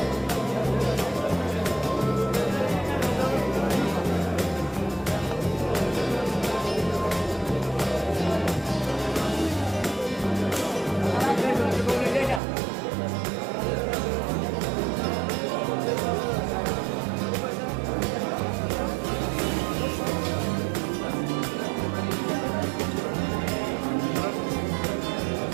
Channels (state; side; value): drops out; left; at 12.4 s